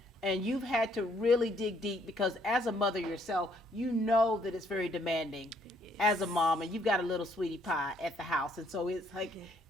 And you've had to really dig deep because as a mother yourself, you know that it's very demanding as a mom, and you've got a little sweetie pie at the house. And so it's like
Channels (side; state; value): both; normal; correlation 0.67